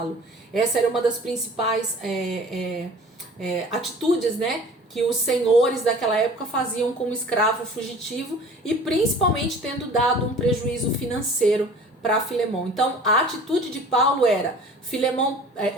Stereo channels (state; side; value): normal; both; correlation 0.45